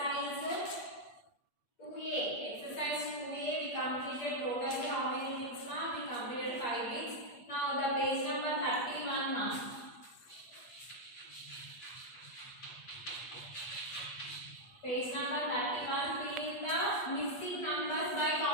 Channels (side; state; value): right; late; 8.4 ms